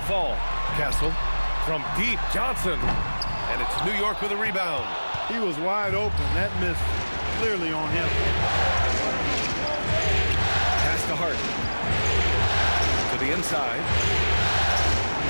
Castle from deep, Johnson. And it's New York with a rebound. He was wide open. That miss clearly on him. Pass to Hart. the inside.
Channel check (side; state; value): both; inverted; correlation -1.00